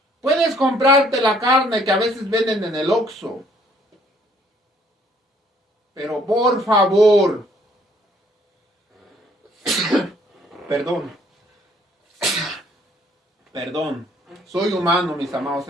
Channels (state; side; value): normal; both; correlation 0.63